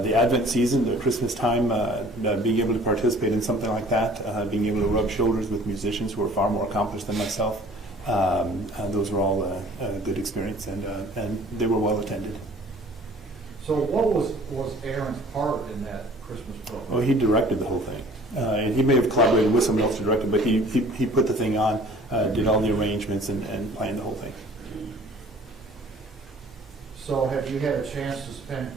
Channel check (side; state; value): both; normal; correlation 0.50